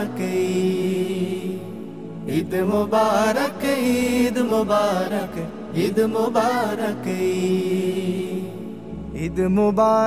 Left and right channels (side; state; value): both; identical; correlation 1.00